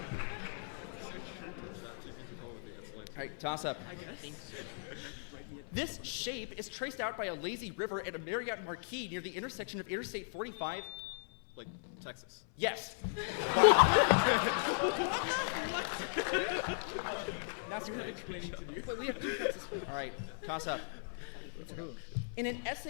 So true. ChatGPT come up with the answer line. All right, toss up. I guess. Write me a This shape is traced out by a lazy river at a Marriott Marquis near the intersection of Interstate 45. Like Texas. Yes. That's you have explaining to do. All right, toss up. In an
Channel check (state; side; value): silent; right; 53 dB below the other